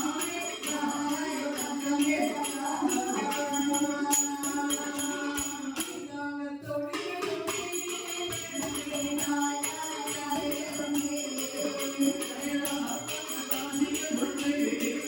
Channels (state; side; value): identical; both; correlation 1.00